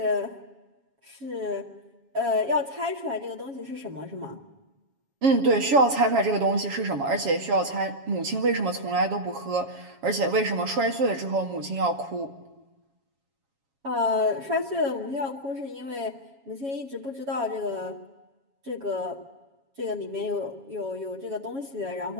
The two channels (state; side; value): late; left; 7.3 ms